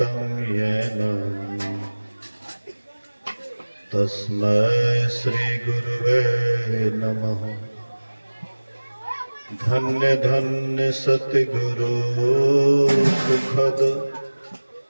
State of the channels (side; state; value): both; inverted; correlation -1.00